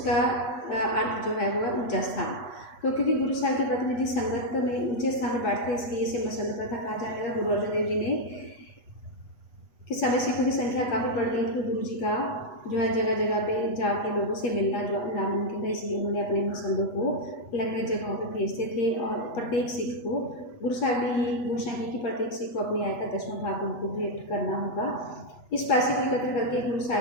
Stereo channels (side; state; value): right; late; 8.2 ms